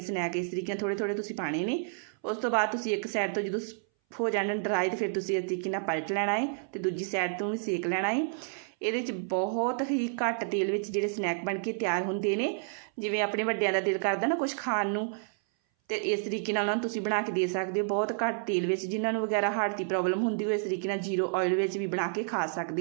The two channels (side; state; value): left; silent; 58 dB below the other